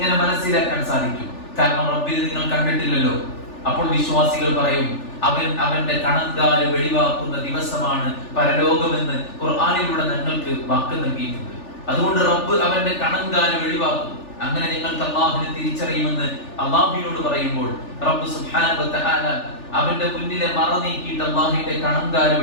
മനസ്സിലാക്കാൻ സാധിക്കും? കാരണം റബ്ബിനെ നിങ്ങൾ കണ്ടിട്ടില്ലല്ലോ. അപ്പോൾ വിശ്വാസികൾ പറയും, അവന്റെ കണങ്കാല് വെളിവാക്കുന്ന ദിവസമാണ് പരലോകമെന്ന് ഖുർആനിലൂടെ ഞങ്ങൾക്ക് വാക്ക് നൽകിയിട്ടുണ്ട്. അതുകൊണ്ട് റബ്ബ് അവന്റെ കണങ്കാല് വെളിവാക്കും. അങ്ങനെ നിങ്ങൾക്ക് അല്ലാഹുവിനെ തിരിച്ചറിയുമെന്ന് അല്ലാഹുവിനോട് പറയുമ്പോൾ റബ്ബ് സുബ്ഹാനഹു വ തആല അവന്റെ മുന്നിലെ മറ നീക്കിയിട്ട് അല്ലാഹുവിന്റെ കണങ്കാല്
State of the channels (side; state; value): right; late; 3.4 ms